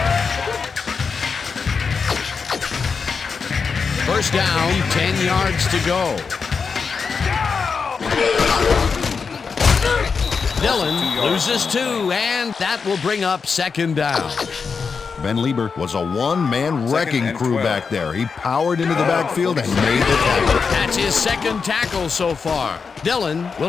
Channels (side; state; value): right; quieter; 5.4 dB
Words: First down, 10 yards to go. Dillon loses 2, and that will bring up second down. Ben Lieber was a one-man wrecking and crew 12. back there. He powered into the backfield and made the tackle. That's his second tackle so far. Dillon